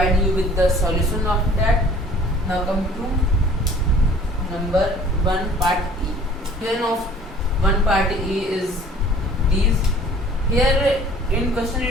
you with the solution of that. Now come to number 1 part E. Then of 1 part E is these. Here in question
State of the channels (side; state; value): both; normal; correlation 0.51